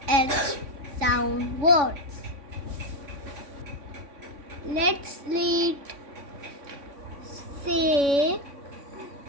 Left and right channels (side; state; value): left; late; 3.5 ms